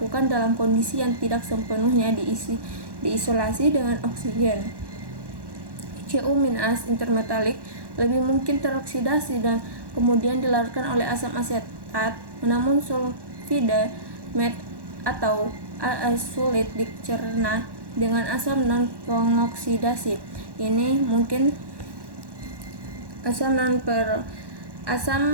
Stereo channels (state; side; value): late; left; 1.1 ms